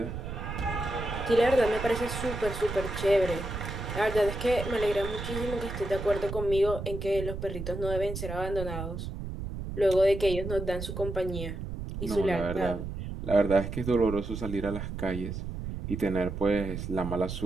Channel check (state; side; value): noise; right; rumble, 6 dB below the sound